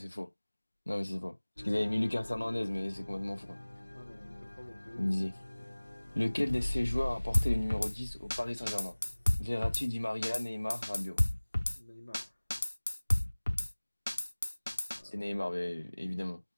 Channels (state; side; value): inverted; both; correlation -1.00